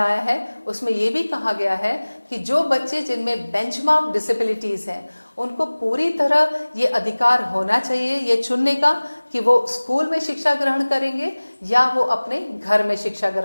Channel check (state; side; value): inverted; both; correlation -1.00